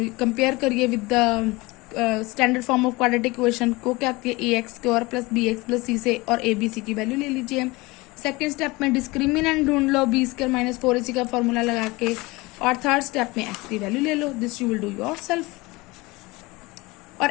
करिए with the standard form of quadratic equation को। क्या आती है ax square plus bx plus c से, और abc की वैल्यू ले लीजिए। सेकेंड स्टेप में डिस्क्रिमिनेंट ढूंढ लो b स्क्वायर माइनस 4ac का फॉर्मूला लगा के, और थर्ड स्टेप में x की वैल्यू ले लो। This you will do yourself. और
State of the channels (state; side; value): quieter; right; 22.8 dB